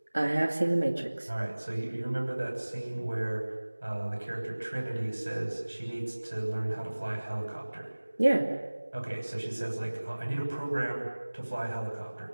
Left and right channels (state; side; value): inverted; both; correlation -1.00